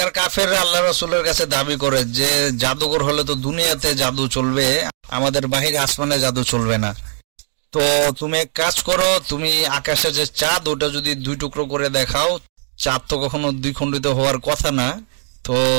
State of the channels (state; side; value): silent; left; digital silence